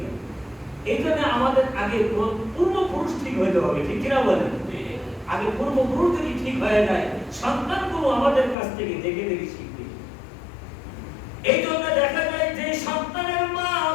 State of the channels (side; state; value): right; drops out; at 8.6 s